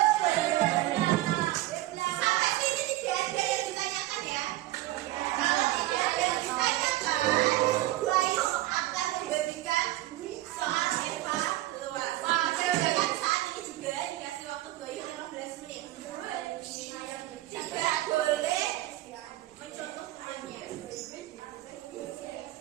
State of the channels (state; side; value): quieter; left; 16.1 dB